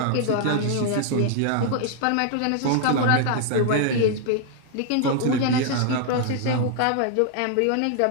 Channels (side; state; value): both; different; correlation 0.00